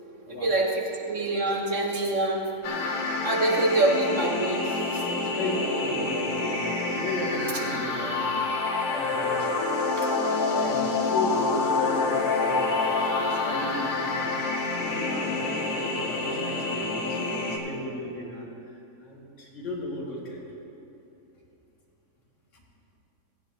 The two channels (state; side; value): late; left; 3.6 ms